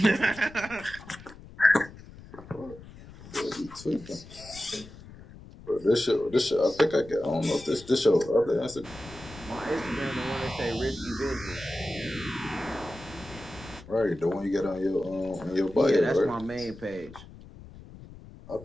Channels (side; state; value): left; noise; rumble, 18 dB below the sound